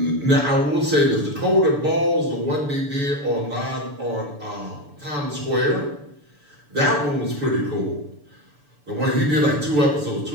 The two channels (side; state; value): left; late; 6.9 ms